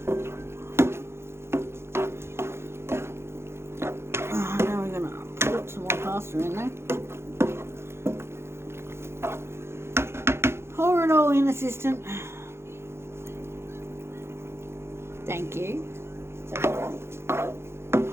Now we're going to put some more pasta in there. Pour it all in, assistant. Thank you.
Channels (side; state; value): left; late; 0.12 ms